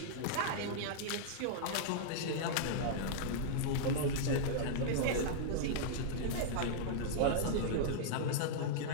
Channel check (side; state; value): both; different; correlation -0.02